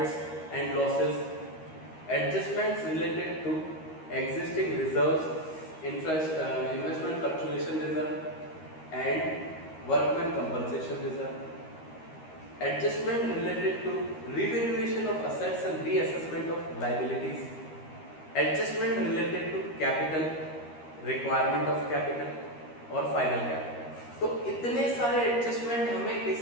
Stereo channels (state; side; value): late; right; 13 ms